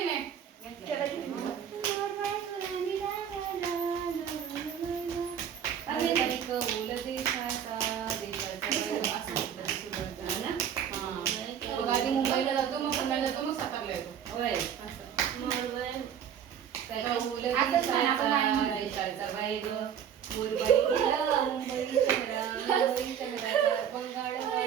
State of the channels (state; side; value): quieter; left; 8.7 dB